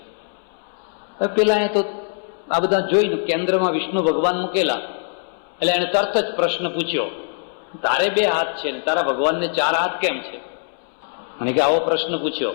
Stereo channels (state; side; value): silent; right; 64 dB below the other